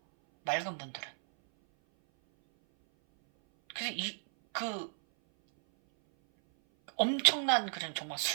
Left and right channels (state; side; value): silent; left; 56 dB below the other